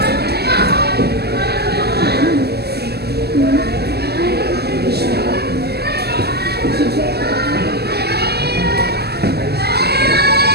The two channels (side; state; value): left; late; 0.47 ms